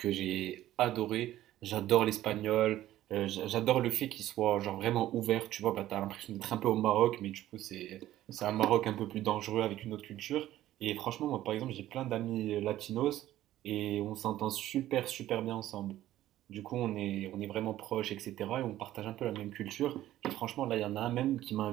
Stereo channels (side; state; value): left; quieter; 13.9 dB